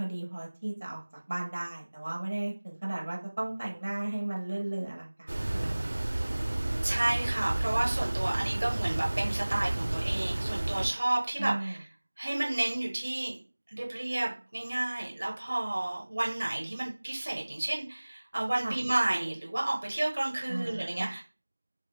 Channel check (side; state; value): both; inverted; correlation -1.00